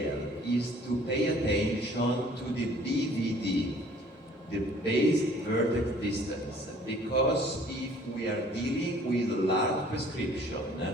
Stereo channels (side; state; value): both; normal; correlation 0.54